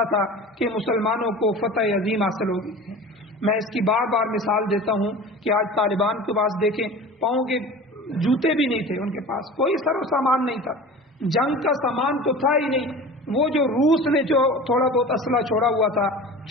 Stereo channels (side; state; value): both; normal; correlation 0.37